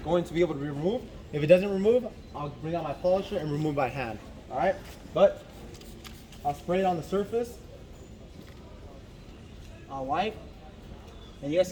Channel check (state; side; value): identical; both; correlation 1.00